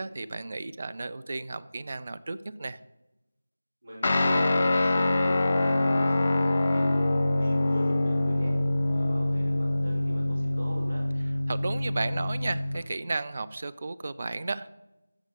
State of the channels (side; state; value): both; inverted; correlation -0.97